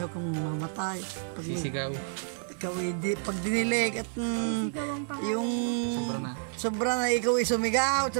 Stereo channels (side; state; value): left; silent; 58 dB below the other